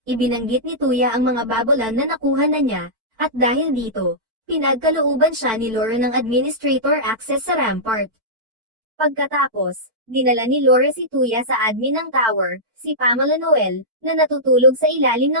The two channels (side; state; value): left; late; 4.5 ms